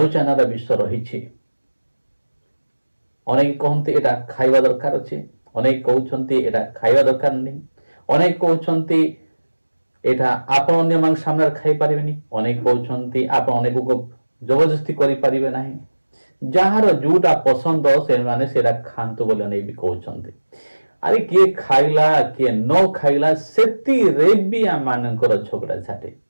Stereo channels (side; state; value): both; inverted; correlation -1.00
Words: रा विषय रही अनेक कहते एटा खाइबा दरकार अछि अनेक कहउछन्ती एटा खाइबा दरकार नहीं अनेक कहउछन्ती एटा आपण अन्य मान सामने खाइ परिबेनी अनेक कहउछन्ती आपण अनेक को जबरदस्ती करि परिबे नाही जहार जोटा पसंद से माने सेरा खांतु बोले नहीं भी कहउछन्ती अरे किए खाइला किए न खाइला सेति रे भी आ मानकर झगड़ा झाटे